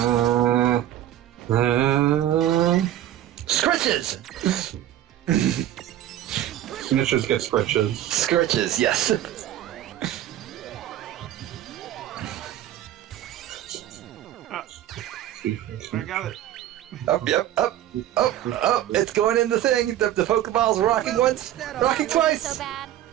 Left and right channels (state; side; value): quieter; left; 12.5 dB